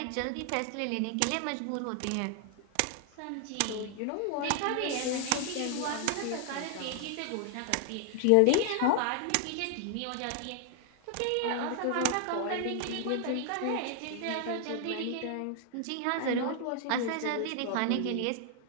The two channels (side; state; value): both; different; correlation 0.00